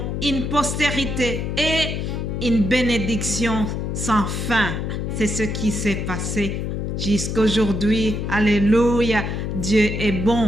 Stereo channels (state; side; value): noise; left; hum, 2 dB below the sound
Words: une postérité et une bénédiction sans fin. C'est ce qui s'est passé. jusqu'aujourd'hui. Alléluia, Dieu est